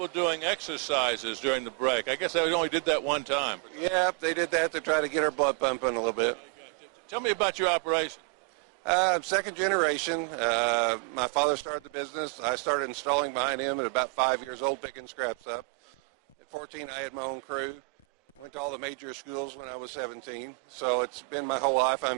doing exercises during the break. I guess they only did that one time. Yeah, they did that to try to get our blood pumping a little bit. Tell me about your operation. I'm second generation. My father started the business. I started installing behind him at about 5 years old, picking scraps up. At 14, I had my own crew. Went to all the major schools when I was 17. So it's been my whole life.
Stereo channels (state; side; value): quieter; left; 35.2 dB